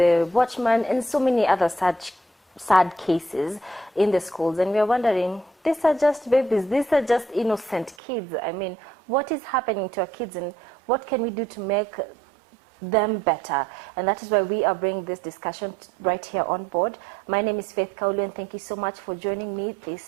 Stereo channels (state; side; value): drops out; left; at 8.0 s